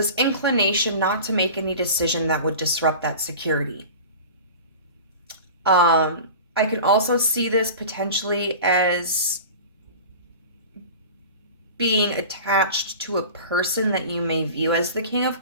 inclination not to make any decision that would disrupt that security. I can also see this potentially as being attached to a person that you may view as the King of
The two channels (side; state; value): both; inverted; correlation -0.36